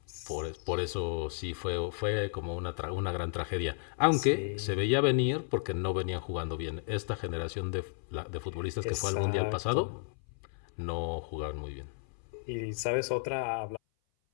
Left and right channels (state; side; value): silent; right; 56 dB below the other